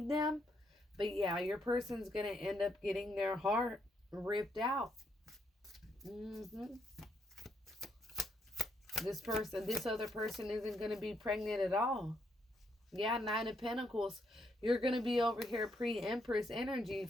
them. But yeah, your person's going to end up getting their heart ripped out. This other person isn't going to be pregnant at all. Yeah, 9 of Pentacles. You're going to be over here pre-Empress energy.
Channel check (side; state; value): both; normal; correlation 0.75